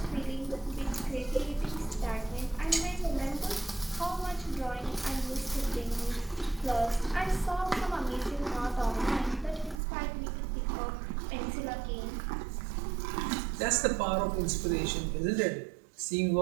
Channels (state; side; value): drops out; left; at 9.8 s